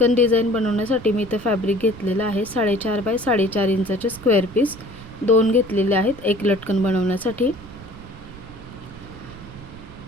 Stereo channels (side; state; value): right; noise; rumble, 17 dB below the sound